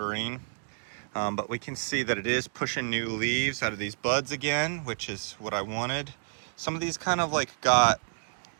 But we can see that it is pushing new leaves out of these buds again, which is what I wanted. Some of these kind of like got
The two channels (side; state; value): left; silent; digital silence